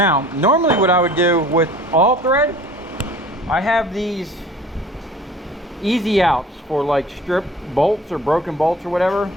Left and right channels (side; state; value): both; normal; correlation 0.46